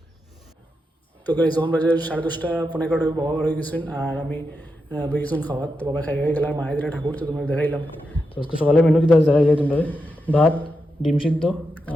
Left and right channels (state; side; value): normal; both; correlation 0.86